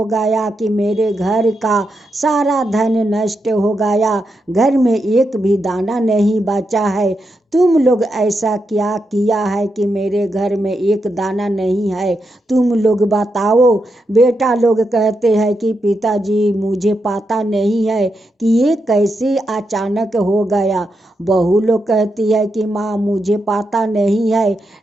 गया कि मेरे घर का सारा धन नष्ट हो गया, घर में एक भी दाना नहीं बचा है। तुम लोग ऐसा क्या किया है कि मेरे घर में एक दाना नहीं है, तुम लोग बताओ। बेटा लोग कहते हैं कि पिताजी मुझे पता नहीं है कि ये कैसे अचानक हो गया। बहू लोग कहती है कि माँ मुझे पता नहीं है,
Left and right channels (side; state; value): both; normal; correlation 0.84